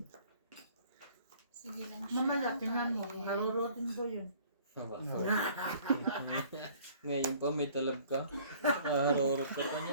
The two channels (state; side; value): inverted; both; correlation -0.54